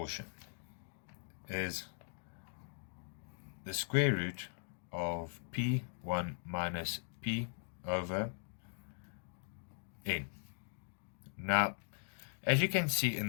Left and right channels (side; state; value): right; silent; digital silence